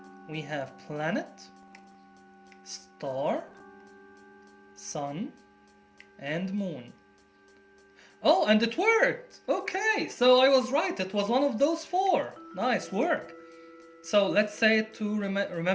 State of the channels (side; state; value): both; identical; correlation 1.00